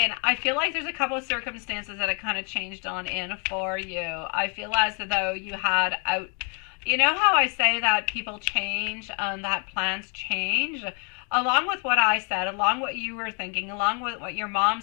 I feel like there's a couple of circumstances that it kind of changed on in for you. I feel as though you had out, you know how I say that people change and that plans change? Along with what I said, along what you were thinking, along with what your mom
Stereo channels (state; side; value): quieter; right; 36.9 dB